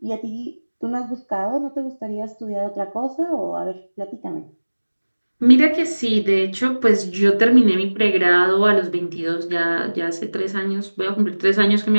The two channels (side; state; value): both; inverted; correlation -1.00